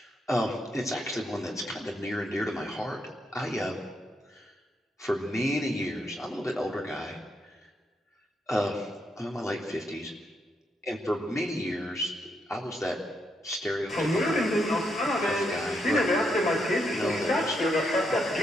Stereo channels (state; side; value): normal; both; correlation 0.79